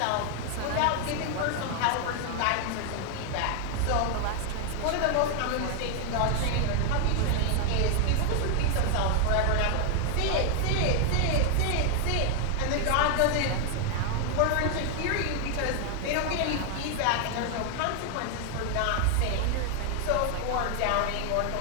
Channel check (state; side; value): different; both; correlation 0.00